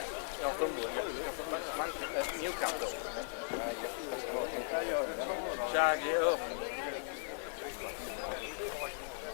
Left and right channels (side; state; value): right; silent; digital silence